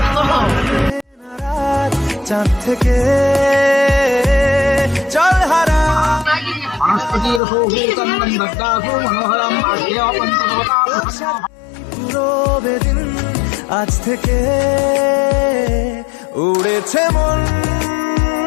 চাঁদ থেকে চল হারা পুরো বেদিন আজ থেকে উড়েছে মন,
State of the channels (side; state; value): right; drops out; at 7.4 s